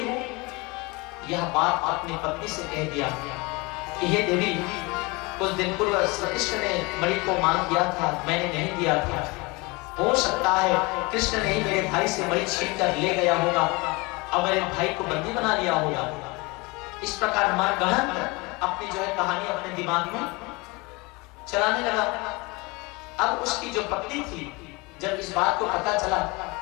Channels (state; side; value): quieter; right; 25.8 dB